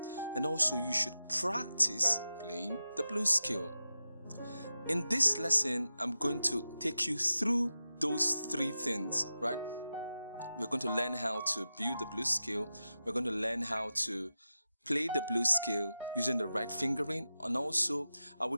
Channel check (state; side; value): inverted; both; correlation -0.92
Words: and also you should practice playing the blues scale. In this lesson, I'm going to take you through those 3 things, right? We're going to learn how to build the blues scale. We're going to learn how to play the blues scale using the right fingering, and also I will